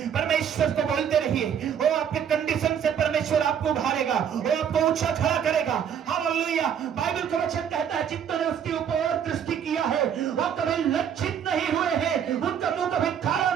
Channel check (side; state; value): left; quieter; 8.4 dB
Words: परमेश्वर को बोलते रहिए। वो आपके कंडीशन से परमेश्वर आपको उभारेगा, वो आपको ऊंचा खड़ा करेगा। हालेलुया। बाइबल का वचन कहता है जितनों ने उसके ऊपर दृष्टि किया है वो कभी लज्जित नहीं हुए हैं, उनका मुंह कभी काला